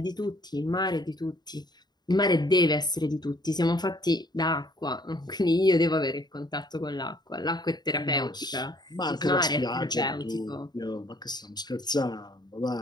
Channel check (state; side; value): late; right; 0.20 ms